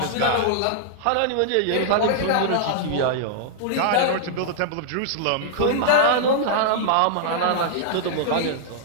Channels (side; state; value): both; different; correlation -0.01